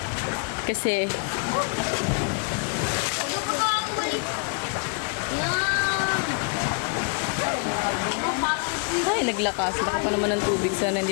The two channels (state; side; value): quieter; right; 36.4 dB